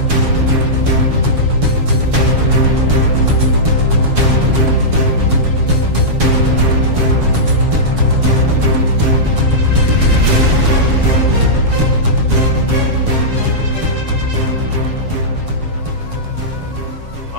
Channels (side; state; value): left; late; 7.3 ms